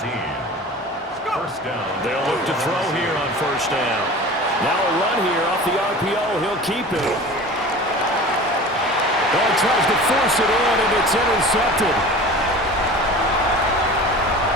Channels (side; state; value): both; normal; correlation 0.38